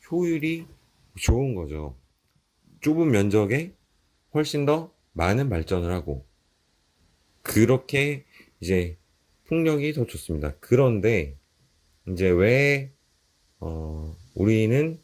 효율이 좋은 거죠. 좁은 면적에 훨씬 더 많은 발전을 하고 그렇게 이제 풍력이 더 좋습니다. 그런데 이제 왜 우리는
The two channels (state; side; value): identical; both; correlation 1.00